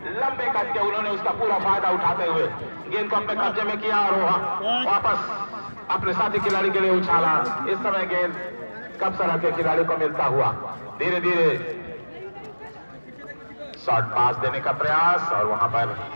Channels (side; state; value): both; inverted; correlation -1.00